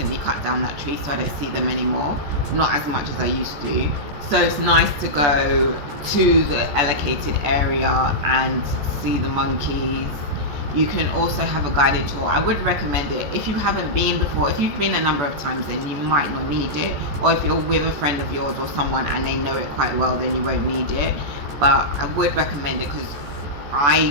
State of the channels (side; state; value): left; late; 14 ms